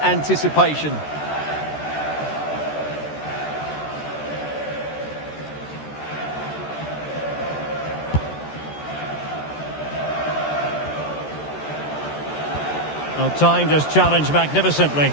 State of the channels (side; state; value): right; late; 13 ms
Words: anticipation. Well, time just challenged magnificently.